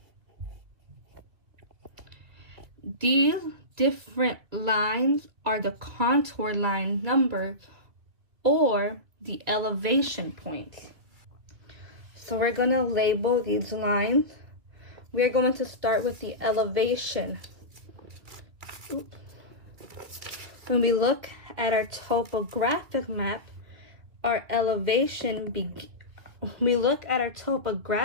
These different lines are the contour line number or the elevation points. So we're going to label these lines. We're going to start with the elevation. When we look at our topographic map, our elevation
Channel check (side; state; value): left; late; 2.3 ms